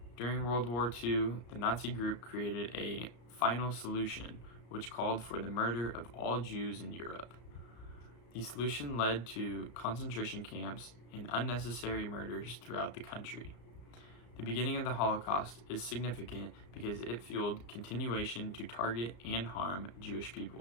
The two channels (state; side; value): late; right; 34 ms